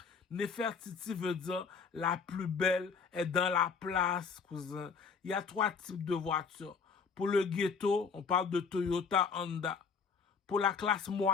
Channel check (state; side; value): quieter; right; 5.7 dB